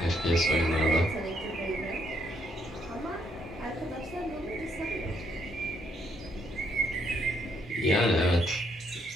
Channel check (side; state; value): both; normal; correlation 0.73